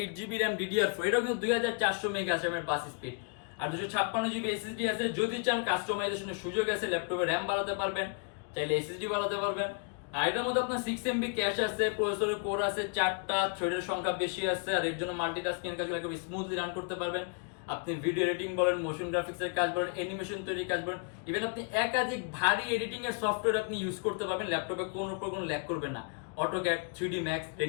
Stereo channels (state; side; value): quieter; right; 36.1 dB